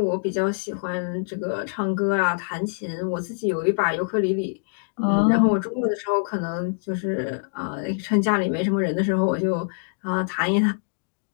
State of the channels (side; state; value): right; silent; digital silence